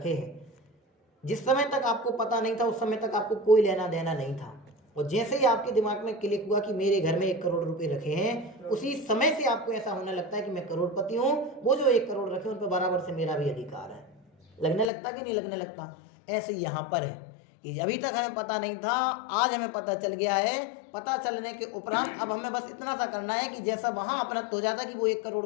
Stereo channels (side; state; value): right; drops out; at 14.9 s